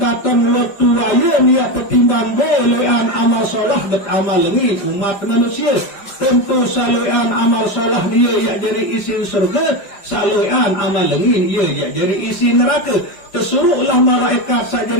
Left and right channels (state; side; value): late; right; 5.1 ms